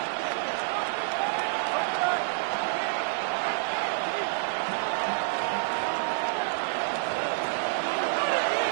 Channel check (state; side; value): silent; left; digital silence